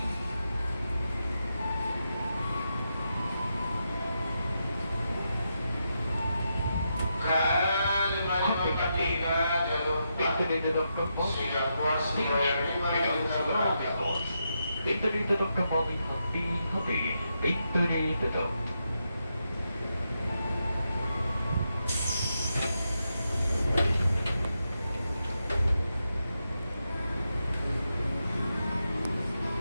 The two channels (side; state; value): both; inverted; correlation -0.84